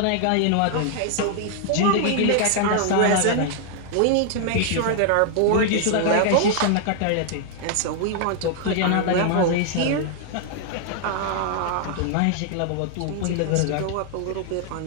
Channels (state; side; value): different; both; correlation 0.00